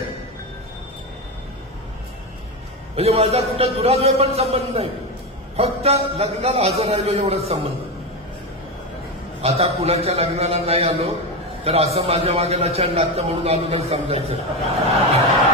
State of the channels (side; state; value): both; normal; correlation 0.15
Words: म्हणजे माझा कुठं दुराद्वय पण संबंध नाही, फक्त लग्नाला हजर राहिलो एवढाच संबंध. आता कुणाच्या लग्नाला नाही आलो तर असं माझ्या मागेला छान लागतं म्हणून आलो तर समजायचं,